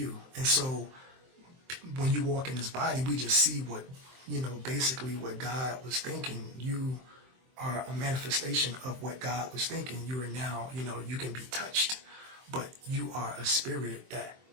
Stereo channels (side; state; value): left; late; 23 ms